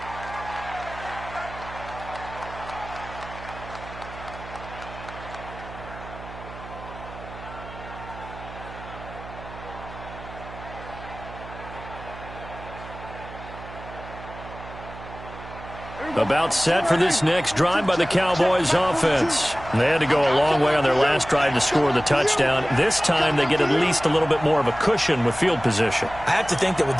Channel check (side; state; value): right; noise; hum, 14 dB below the sound